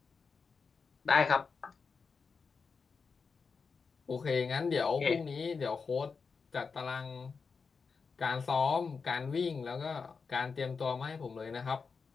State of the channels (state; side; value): quieter; right; 5.2 dB